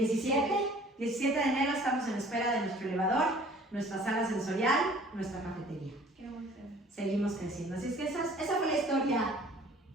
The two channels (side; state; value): both; normal; correlation 0.52